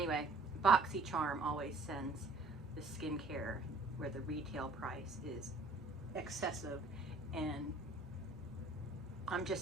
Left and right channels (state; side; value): quieter; left; 3.1 dB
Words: BoxyCharm always sends the skincare where the retail price is excessive, and I'm